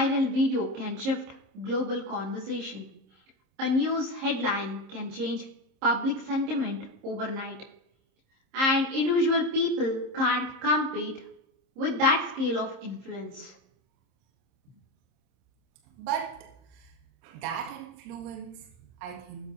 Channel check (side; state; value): left; late; 26 ms